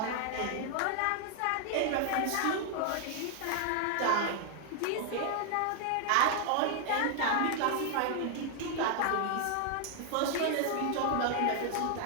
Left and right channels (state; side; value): different; both; correlation 0.00